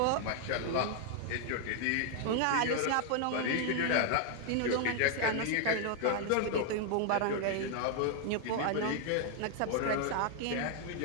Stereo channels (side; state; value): both; different; correlation 0.01